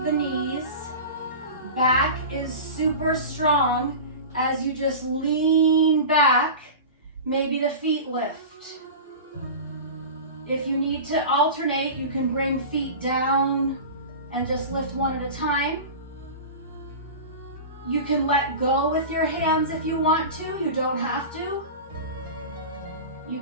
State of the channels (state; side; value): inverted; both; correlation -0.31